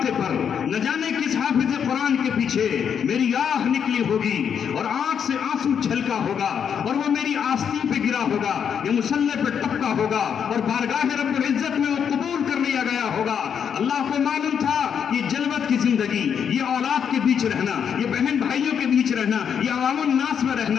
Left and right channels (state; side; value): quieter; right; 7.7 dB